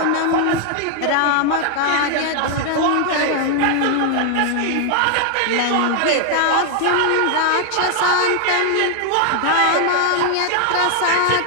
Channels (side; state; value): both; different; correlation 0.00